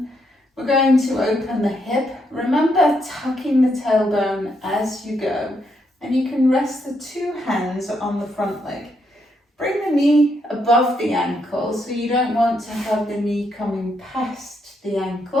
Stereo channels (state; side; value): normal; both; correlation 0.77